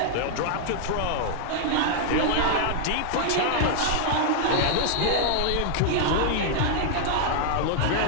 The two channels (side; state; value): both; different; correlation -0.01